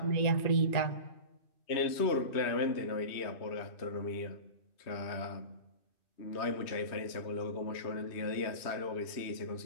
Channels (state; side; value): late; right; 3.1 ms